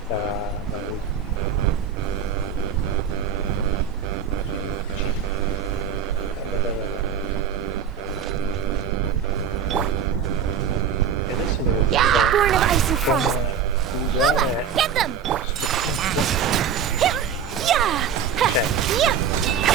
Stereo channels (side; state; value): left; quieter; 7.3 dB